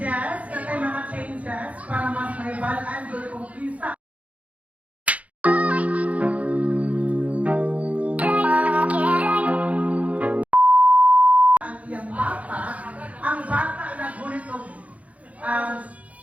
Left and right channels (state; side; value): late; left; 0.067 ms